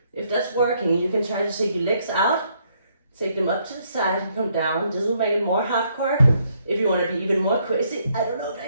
If that's working, you can try to take your legs out, take them up to the side and come down. This will make it more hardcore. If you want to be even more crazy, I don't know if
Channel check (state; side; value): inverted; both; correlation -0.72